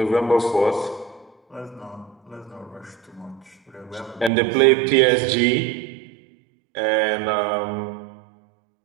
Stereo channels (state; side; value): drops out; left; at 4.3 s